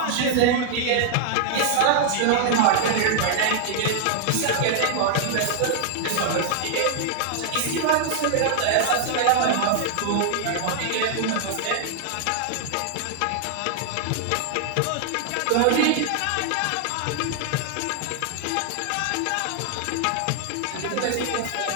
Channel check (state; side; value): different; both; correlation -0.01